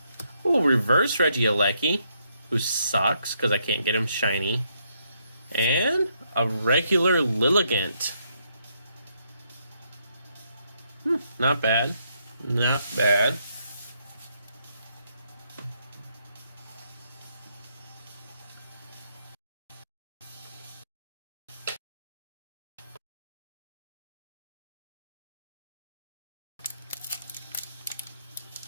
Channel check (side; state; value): both; inverted; correlation -0.75